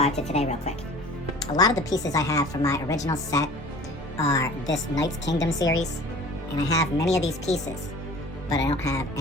to today real quick. A lot of the pieces I have from my original set are this Knights Kingdom series, and I have many of these pieces, but I don't have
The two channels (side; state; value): both; normal; correlation 0.44